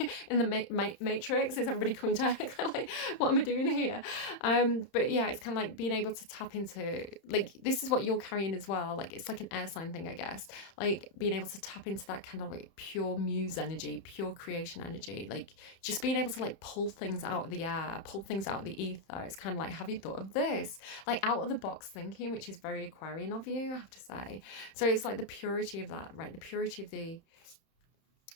in the matrix, is everybody coming to kind of like, what am I doing here? But yeah, it's kind of like being able to tap into, like, this is what you're carrying as well. Like, it's like an air sign thing, I guess. Like, being able to tap into that kind of like pure muse energy, pure creation energy, like just being able to like pull things out of the air, pull things out of the ether. It's kind of like, have you thought of this? Like, out of the box thinking, which is very Aquarian of you, I have to say. So it's like the purity of that, right? The purity of the,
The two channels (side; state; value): right; late; 31 ms